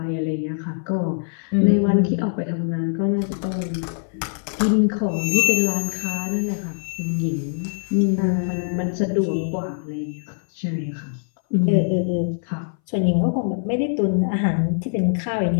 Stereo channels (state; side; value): silent; right; 61 dB below the other